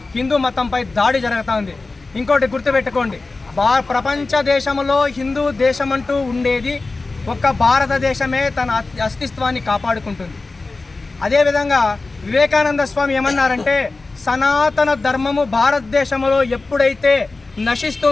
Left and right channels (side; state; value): right; quieter; 3.6 dB